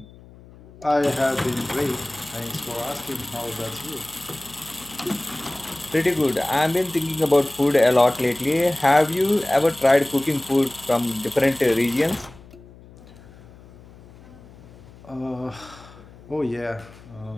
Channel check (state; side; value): noise; left; hum, 22 dB below the sound